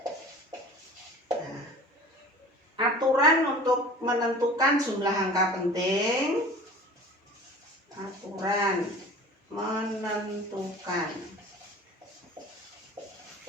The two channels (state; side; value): normal; both; correlation 0.41